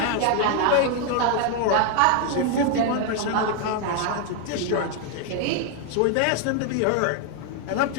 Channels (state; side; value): different; both; correlation 0.00